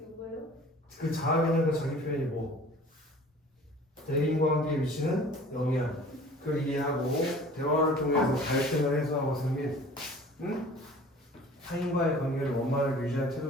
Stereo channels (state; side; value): normal; both; correlation 0.47